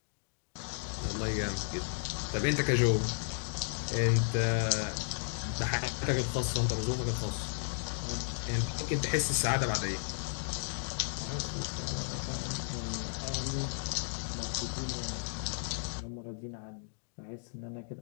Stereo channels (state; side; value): silent; right; digital silence